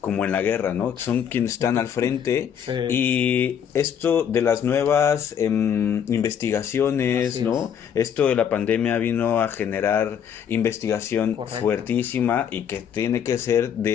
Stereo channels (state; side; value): quieter; right; 8.4 dB